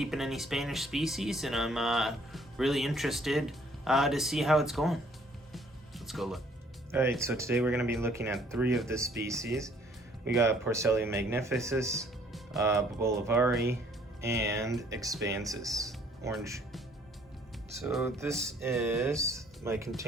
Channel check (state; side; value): normal; both; correlation 0.60